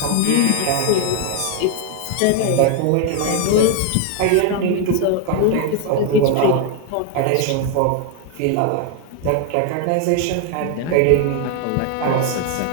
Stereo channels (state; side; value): different; both; correlation 0.01